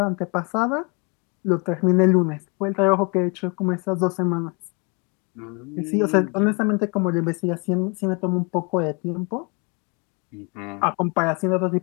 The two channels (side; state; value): right; quieter; 31.9 dB